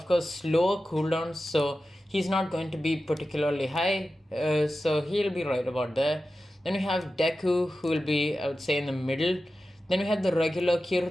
course, slower cooldowns, so he's not going to be particularly high. So he'll be right about there. Then we have Deku, who will be, I would say, in the middle. Then we have the regular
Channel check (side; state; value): both; normal; correlation 0.93